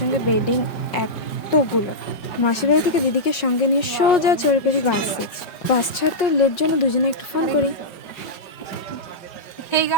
বেডিং এতগুলো। মাসিবাড়ি থেকে দিদিকে সঙ্গে নিয়ে সোজা চড়ে পড়ি বাসে। বাস ছাড়তে লেট জন্য দুজনে একটু ফোন করি। Hey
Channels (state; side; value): late; right; 5.6 ms